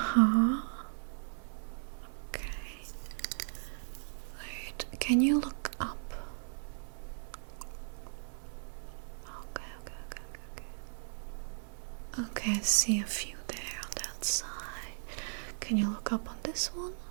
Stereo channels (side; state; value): left; silent; digital silence